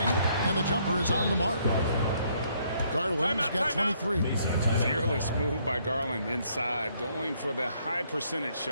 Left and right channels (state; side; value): inverted; both; correlation -0.68